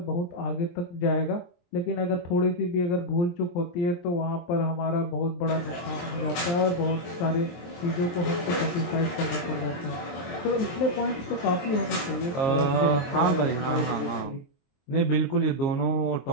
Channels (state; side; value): late; right; 23 ms